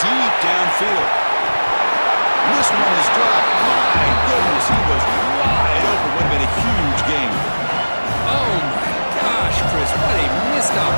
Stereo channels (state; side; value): inverted; both; correlation -1.00